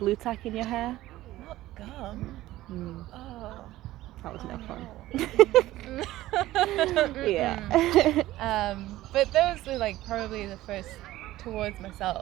tack in your hair? Not gum. Oh. That was no fun. Yeah. But those were like probably the first towards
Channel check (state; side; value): quieter; left; 15.9 dB